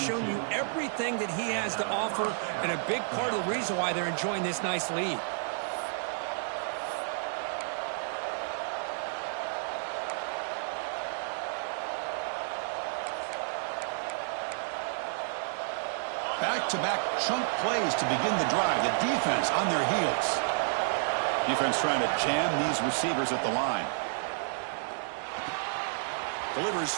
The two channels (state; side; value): silent; left; digital silence